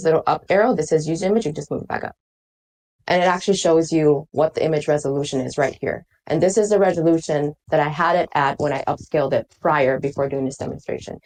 little up arrow that says use image, you just move it back up. And it actually shows you what the image resolution is right here. And this is the resolution that I had it at when I upscaled it prior before doing this demonstration.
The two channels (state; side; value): identical; both; correlation 1.00